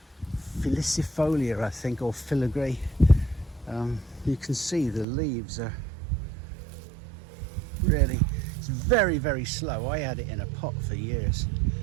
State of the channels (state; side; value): drops out; left; at 5.1 s